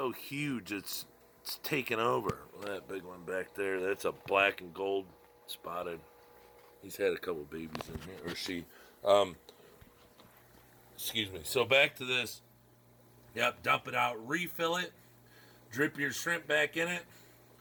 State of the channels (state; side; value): identical; both; correlation 1.00